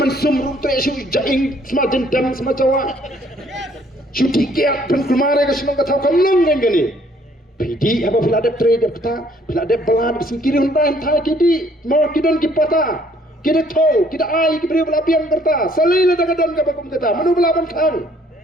sumru tresu jaing semajen dam semacawa Cuti kiat penkulmare ke semua kata kau nang gani. Pidi apa bila ada trade kata bila ada belad singkiri hentai hentai kidi mau kidon kipata kida tau kida ai kibri bela piang kerta salai la daga dan ka bakum kata manu belaban kang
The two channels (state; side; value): normal; both; correlation 0.62